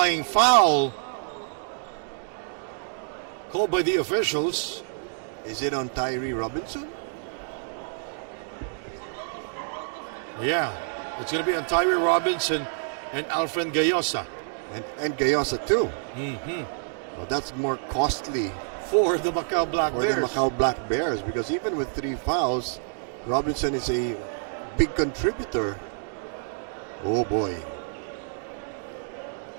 foul called by the officials. Is it on Tyree Robinson? Yeah, it's going to be on Tyree Robinson and Alfred Gayosa. And Gayosa too. Mm-hmm. Well, that's more costly For the Macau Black for Bears. the Macau Black Bears because even with 3 fouls, Robinson is a big contributor. Oh boy.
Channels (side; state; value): left; silent; digital silence